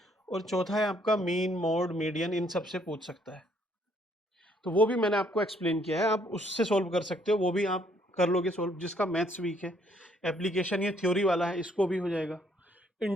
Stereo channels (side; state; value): both; normal; correlation 0.67